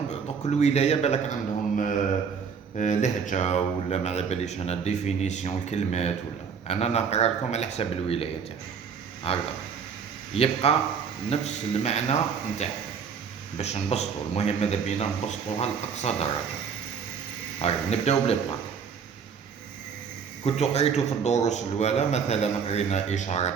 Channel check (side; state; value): left; quieter; 6.5 dB